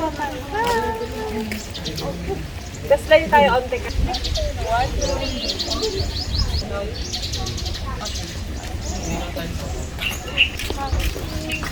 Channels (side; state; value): both; identical; correlation 1.00